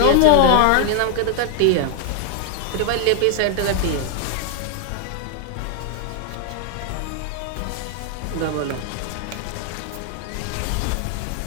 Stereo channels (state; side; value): different; both; correlation 0.00